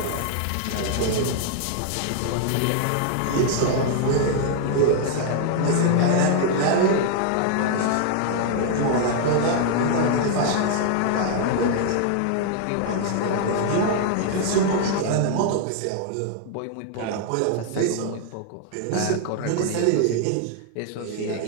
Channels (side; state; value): both; different; correlation 0.00